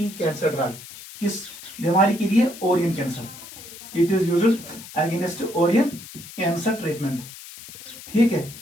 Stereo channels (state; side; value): noise; left; hiss, 15 dB below the sound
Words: cancer drug. किस बीमारी के लिए? Ovarian cancer. It is used against ovarian cancer treatment. ठीक है,